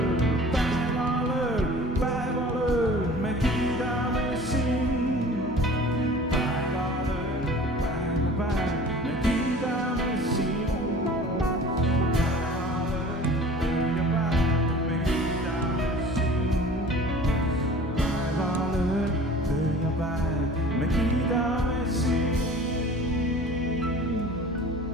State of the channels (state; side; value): normal; both; correlation 0.44